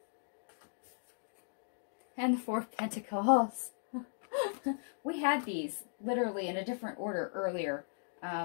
And the Four of Pentacles. We had these literally in a different order earlier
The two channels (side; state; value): right; silent; digital silence